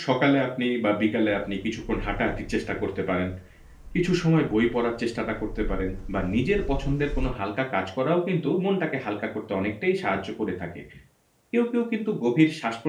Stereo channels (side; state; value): both; identical; correlation 1.00